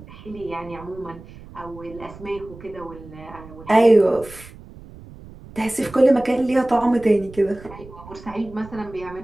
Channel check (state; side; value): noise; right; rumble, 18 dB below the sound